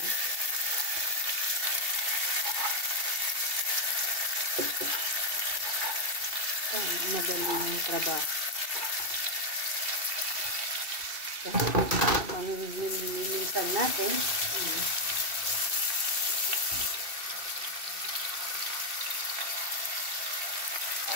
Madali yung trabaho. Habang nililinisan natin,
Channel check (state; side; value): late; left; 2.7 ms